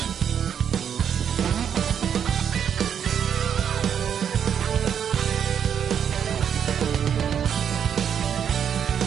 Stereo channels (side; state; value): left; quieter; 8.3 dB